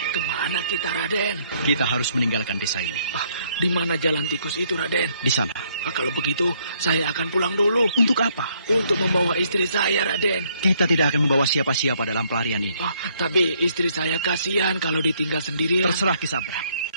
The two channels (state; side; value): inverted; both; correlation -0.68